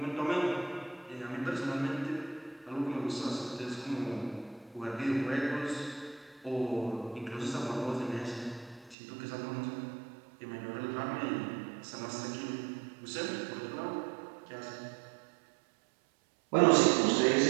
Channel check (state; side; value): drops out; left; at 9.0 s